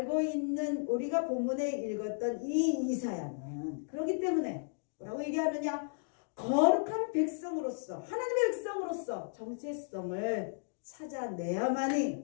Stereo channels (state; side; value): silent; right; digital silence